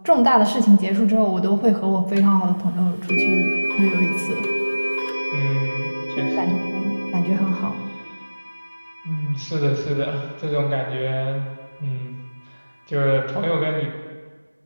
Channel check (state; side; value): inverted; both; correlation -1.00